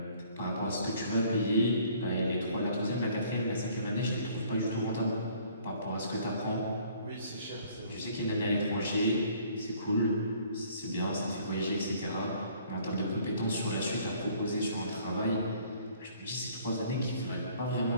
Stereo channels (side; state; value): both; inverted; correlation -0.58